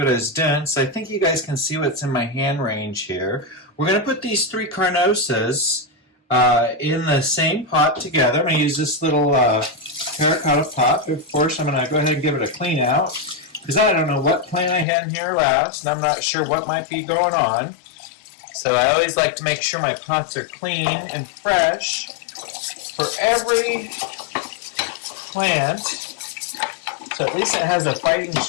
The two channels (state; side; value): drops out; right; at 14.9 s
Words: I was doing. So I think you guys can see what's in my hand range here. We're going to put these 3 carnosas in the same pot together. I'm going to use this little terracotta pot. Of course, I'm going to go ahead and give it a clean out, because I don't know what plant I had in here last, and I'm not sure what might be going on. So I always like to make sure my pots are clean and fresh for every plant, so at least it has a fighting